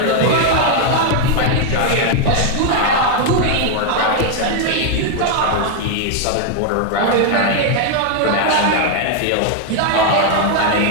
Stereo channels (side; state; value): both; different; correlation 0.00